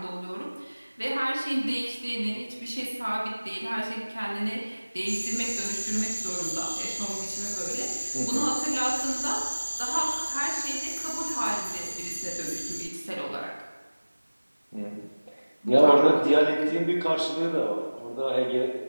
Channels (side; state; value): both; inverted; correlation -1.00